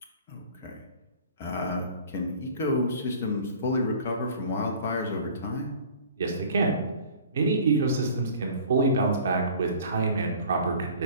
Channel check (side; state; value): both; inverted; correlation -0.46